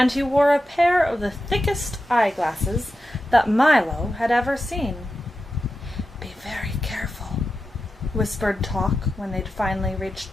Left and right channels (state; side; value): normal; both; correlation 0.91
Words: he wore a pair of the thickest eyeglasses that Milo had ever seen. "Be very careful," whispered Talk when they'd finally